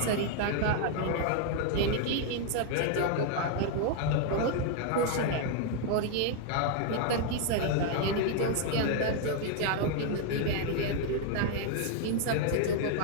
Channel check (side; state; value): both; different; correlation 0.00